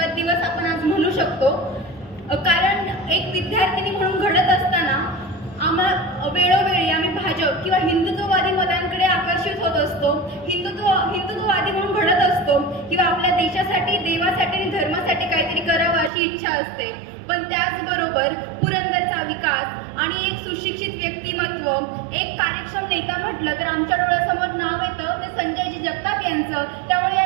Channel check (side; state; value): left; drops out; at 16.1 s